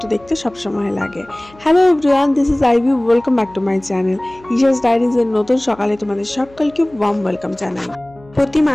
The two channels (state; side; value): noise; left; hum, 26 dB below the sound